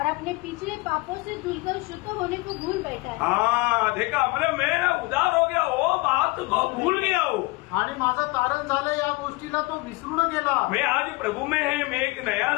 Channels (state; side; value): quieter; right; 23.3 dB